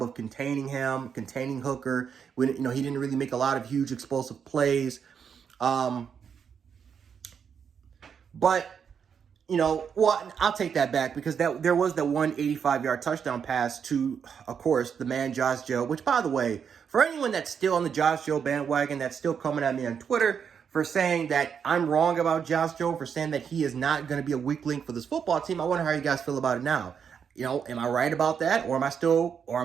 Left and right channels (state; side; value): quieter; left; 7.1 dB